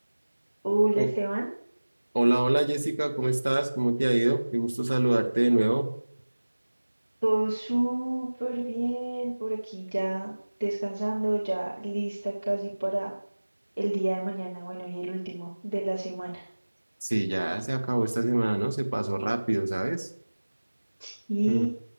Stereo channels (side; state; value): both; inverted; correlation -1.00